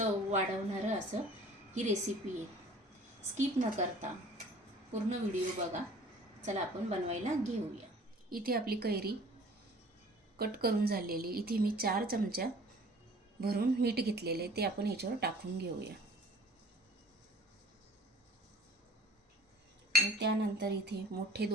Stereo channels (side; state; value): both; normal; correlation 0.49